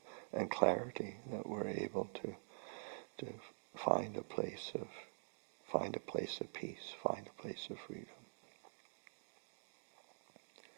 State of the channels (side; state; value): left; silent; digital silence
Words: and clarity that we're able to find a place of peace, find a place of freedom.